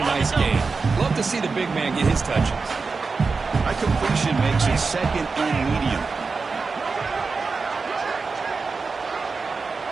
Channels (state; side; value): quieter; left; 4.5 dB